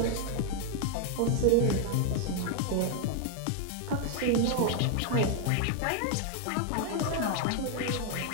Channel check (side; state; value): both; different; correlation 0.00